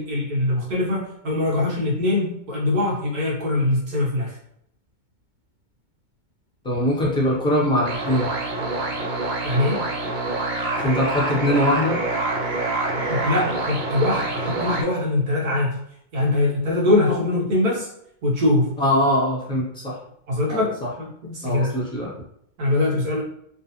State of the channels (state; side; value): late; left; 2.2 ms